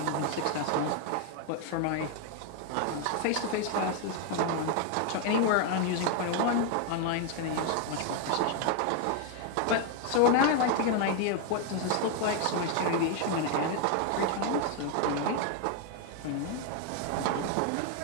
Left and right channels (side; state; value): both; different; correlation 0.01